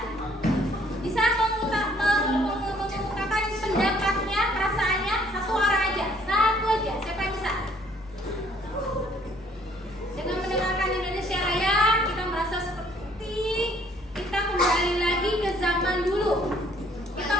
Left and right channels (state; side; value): normal; both; correlation 0.62